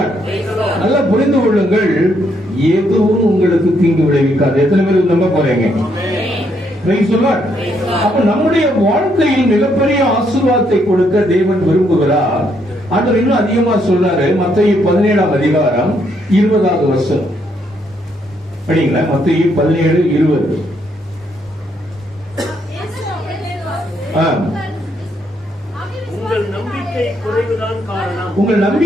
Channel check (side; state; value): both; normal; correlation 0.74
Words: நல்லா புரிந்து கொள்ளுங்கள், எதுவும் உங்களுக்கு தீங்கு விளைவிக்காது. எத்தனை பேர் நம்ப போறீங்க? Price the lord. அப்ப நம்முடைய வாழ்க்கையில் மிகப்பெரிய ஆசீர்வாதத்தை கொடுக்க தேவன் விரும்புகிறார். ஆண்டவர் இன்னும் அதிகமா சொல்றாரு. மத்தேயு 17ஆம் அதிகாரம் 20வது வசனம் படிங்களா? மத்தேயு 17:20. உங்கள் நம்பிக்கை குறைவுதான் காரணம். உங்கள்